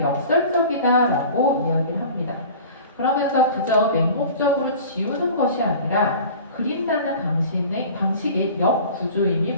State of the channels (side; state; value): both; inverted; correlation -0.41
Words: 역설적이다라고 이야기를 합니다. 그러면서 그저 맹목적으로 지우는 것이 아니라 그린다는 방식의 역구조임이